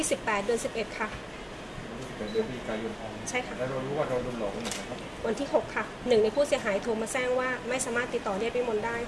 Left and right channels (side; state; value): both; identical; correlation 1.00